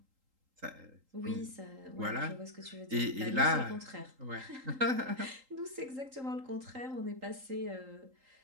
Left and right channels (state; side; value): late; left; 3.8 ms